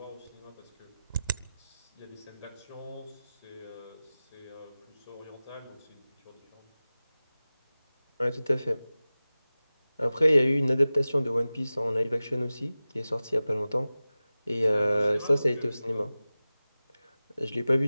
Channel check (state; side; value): inverted; both; correlation -0.96